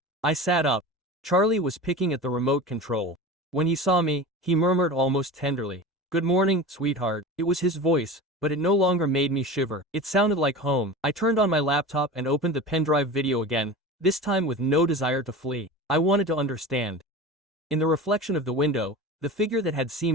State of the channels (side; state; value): both; normal; correlation 0.32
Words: I sat up. Charlie was picking at the remote control. When he saw me, he murmured almost tenderly, "Good morning, sweetheart." It was his voice, but it no longer made me shiver. It sounded like home. I turned on my laptop and opened the pendrive video again, this time with no desire to flee. I wanted to understand. In the reflection of the window, the figure that had